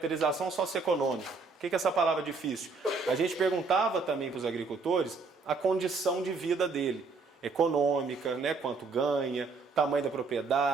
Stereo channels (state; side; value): quieter; left; 4.3 dB